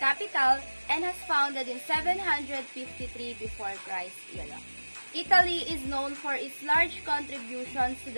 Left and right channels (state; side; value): inverted; both; correlation -1.00